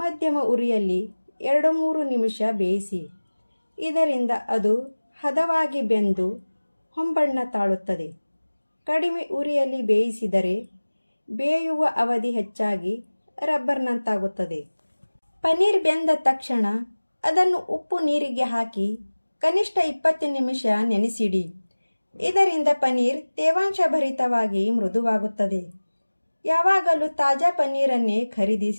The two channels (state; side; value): inverted; both; correlation -1.00